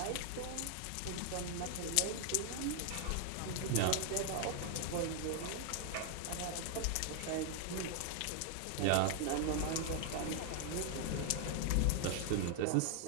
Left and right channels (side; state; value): both; different; correlation 0.00